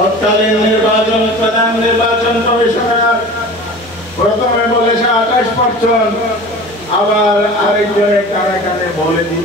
নির্বাচন, প্রধান নির্বাচন কমিশনার প্রথমে বলেছে 28%, আবার আরেকজনের কানে কানে বলে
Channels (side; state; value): both; normal; correlation 0.38